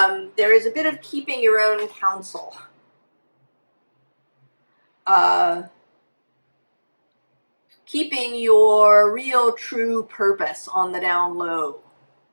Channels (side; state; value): both; inverted; correlation -1.00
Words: there is a bit of keeping your own counsel. Keeping your real true purpose on the down low.